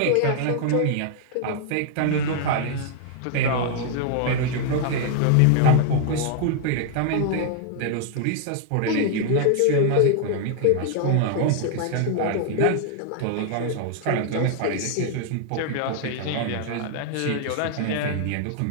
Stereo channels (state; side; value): different; both; correlation 0.00